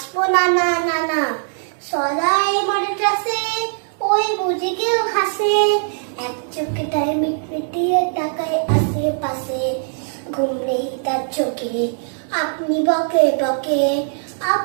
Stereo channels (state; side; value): silent; left; digital silence